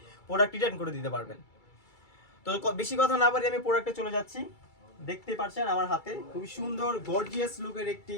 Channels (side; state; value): right; late; 2.3 ms